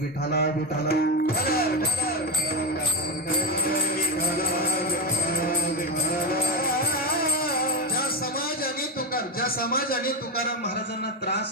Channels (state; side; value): normal; both; correlation 0.13